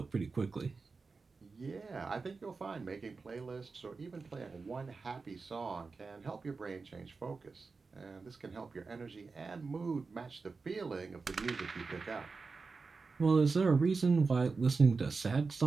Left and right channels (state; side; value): quieter; left; 4.4 dB